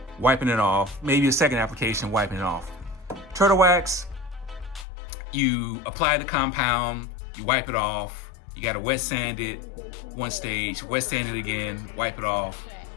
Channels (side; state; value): right; drops out; at 4.9 s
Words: wiping it off, maybe a second application, wiping it off. Turtlewax, you apply the compound, you wipe it off, you gotta wet sand it one stage, wet sand it again, wipe it off,